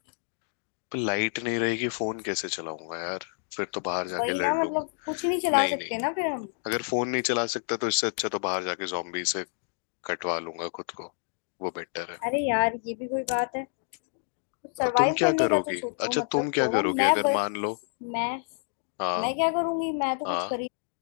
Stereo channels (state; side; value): silent; right; digital silence